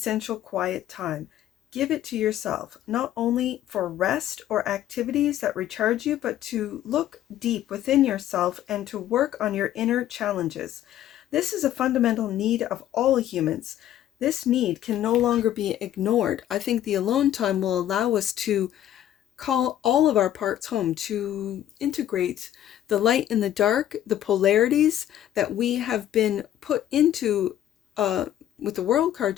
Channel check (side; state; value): right; quieter; 11.9 dB